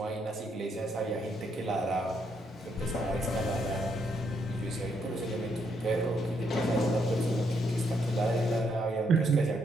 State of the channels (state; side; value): normal; both; correlation 0.75